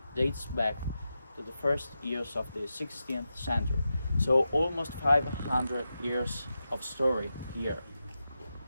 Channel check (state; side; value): inverted; both; correlation -0.90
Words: dates back to the first years of the 16th century. So almost 500 years of story here.